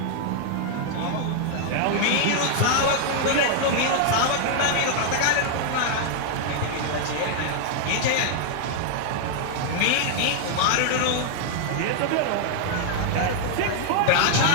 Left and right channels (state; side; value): different; both; correlation -0.01